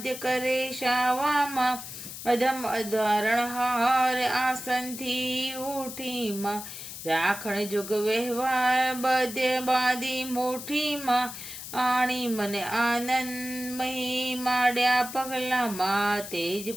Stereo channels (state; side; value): noise; left; hiss, 10 dB below the sound